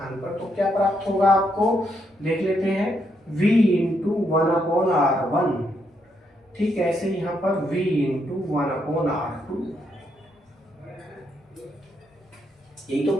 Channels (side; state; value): both; normal; correlation 0.77